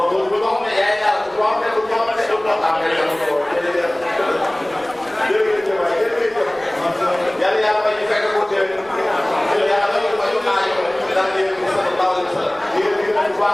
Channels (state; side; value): noise; right; rumble, 25 dB below the sound